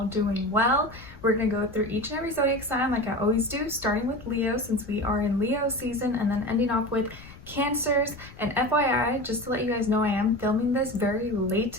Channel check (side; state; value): left; noise; rumble, 20 dB below the sound